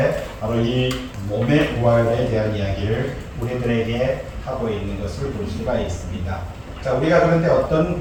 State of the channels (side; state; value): both; identical; correlation 1.00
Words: 바로 이 몸의 부활에 대한 이야기를 우리들에게 하고 있는 것을 볼 수가 있습니다. 자, 우리가 그런데 어떤